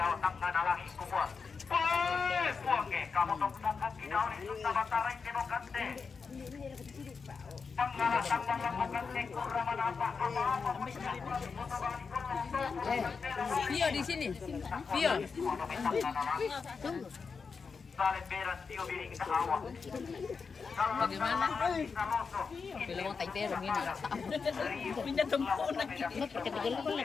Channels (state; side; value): quieter; right; 5.2 dB